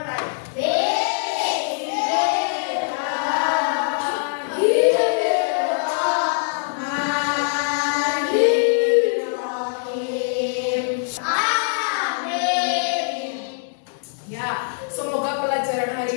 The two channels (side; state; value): right; silent; digital silence